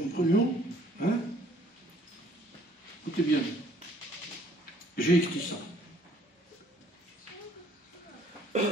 Hein? Écoutez bien, j'ai écrit ça.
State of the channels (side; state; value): both; normal; correlation 0.60